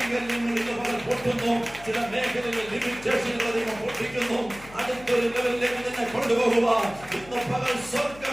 നിന്ന് പകൽ പൊട്ടുന്നു. ചില മേഖലകളിൽ ലിമിറ്റേഷനുകൾ ദൈവം പൊട്ടിക്കുന്നു. അടുത്തൊരു ലെവലിലേക്ക് തന്നെ കൊണ്ടുപോകുക. ഇന്ന് പകൽ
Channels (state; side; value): noise; left; hum, 19 dB below the sound